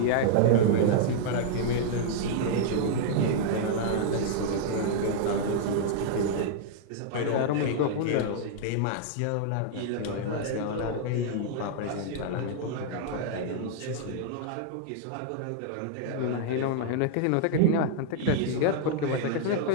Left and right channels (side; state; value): both; different; correlation -0.01